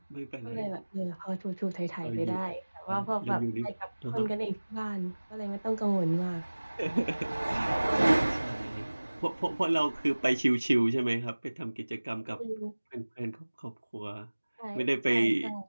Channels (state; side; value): inverted; both; correlation -1.00